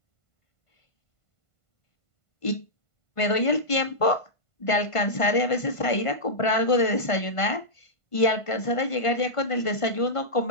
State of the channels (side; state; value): right; late; 1.5 ms